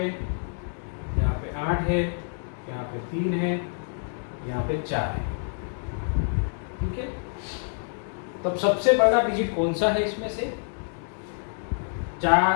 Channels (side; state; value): right; silent; 60 dB below the other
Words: 8 है, यहाँ पे 3 है, यहाँ पे 4 है। ठीक है, तब सबसे बड़ा डिजिट कौन सा है इसमें से?